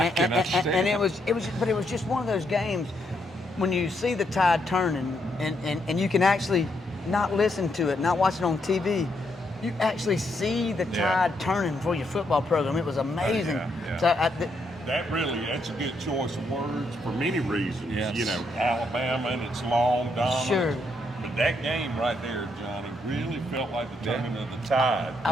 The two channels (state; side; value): normal; both; correlation 0.77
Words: understand. And it was just one of those games when you see the tide turning, and you can actually not listen to it, not watch it on TV. You actually see the tide turning for your football program. It was amazing. Yeah. So That's a good choice of words for many reasons. Yes. You know, Alabama and its long dominance. Sure. But that game right there, Johnny, really felt like the turning of the tide.